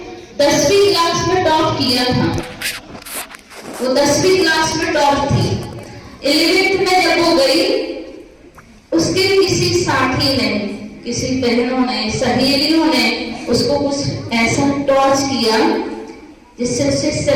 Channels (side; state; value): both; identical; correlation 1.00